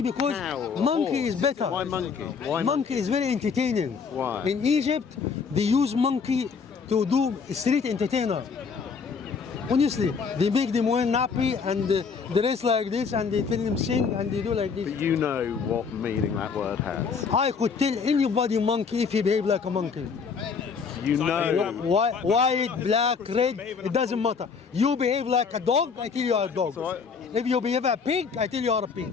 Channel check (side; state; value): right; quieter; 5.6 dB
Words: because cow or a monkey horse. is better. Why monkey? Why Monkey is very entertaining. Why? In Egypt, they use monkey to do street entertainer. Honestly, they make them wear nappy and dress like this, and they tell them sing and they do like this. But you know what meaning that word has. I could tell anybody monkey if he behave like a monkey. You know. White, black, red, it doesn't matter. You behave like a dog, I tell you are a dog. If you behave a pig, I tell you are a pig.